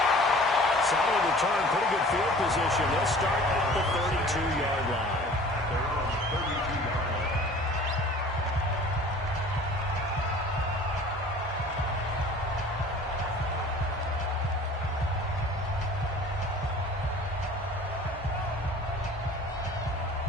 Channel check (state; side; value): normal; both; correlation 0.46